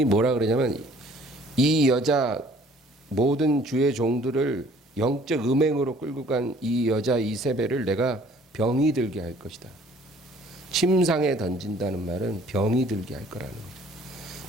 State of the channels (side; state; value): both; normal; correlation 0.56